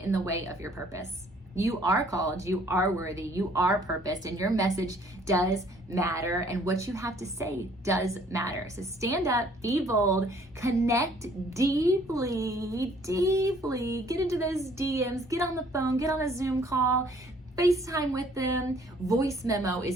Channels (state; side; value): normal; both; correlation 0.59